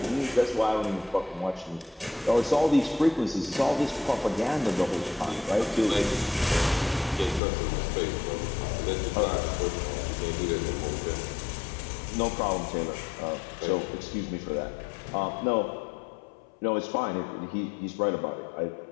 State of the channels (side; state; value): right; drops out; at 7.4 s